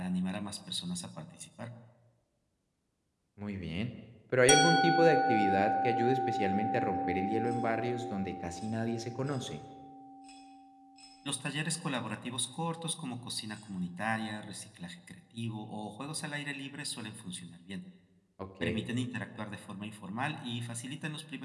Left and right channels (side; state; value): both; identical; correlation 1.00